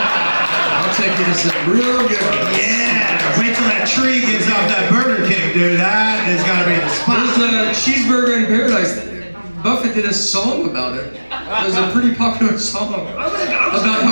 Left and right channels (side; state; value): both; inverted; correlation -1.00